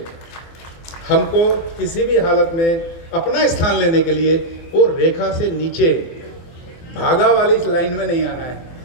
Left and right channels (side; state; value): right; late; 24 ms